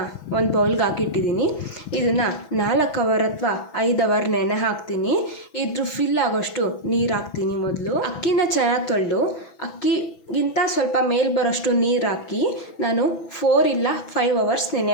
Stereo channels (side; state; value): right; late; 6.0 ms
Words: ಒಂದು ಬೌಲ್ಗೆ ಹಾಕಿಟ್ಟಿದ್ದೀನಿ. ಇದನ್ನು 4 ಅವರ್ ಅಥವಾ 5 ಅವರ್ ನೆನೆ ಹಾಕ್ತೀನಿ. ಇದ್ರ ಫಿಲ್ ಆಗೋಷ್ಟು ನೀರು ಹಾಕ್ತೀನಿ. ಮೊದಲು ಅಕ್ಕಿನ ಚೆನ್ನಾಗಿ ತೊಳೆದು ಅಕ್ಕಿಗಿಂತ ಸ್ವಲ್ಪ ಮೇಲೆ ಬರೋಷ್ಟು ನೀರು ಹಾಕಿ ನಾನು 4 ಇಲ್ಲ 5 ಅವರ್ಸ್